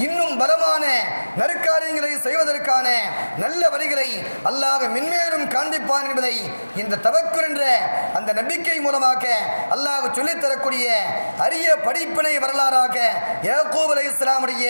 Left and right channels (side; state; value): both; inverted; correlation -1.00